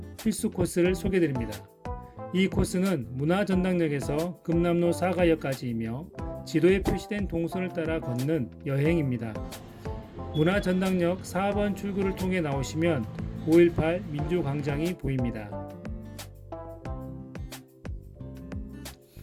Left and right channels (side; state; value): both; identical; correlation 1.00